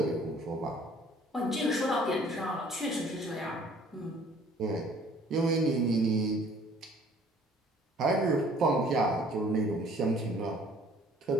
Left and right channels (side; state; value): both; normal; correlation 0.55